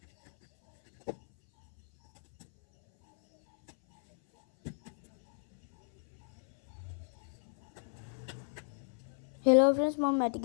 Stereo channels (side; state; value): right; silent; 56 dB below the other